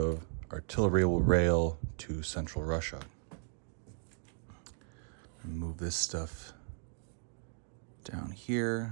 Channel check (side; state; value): left; silent; 54 dB below the other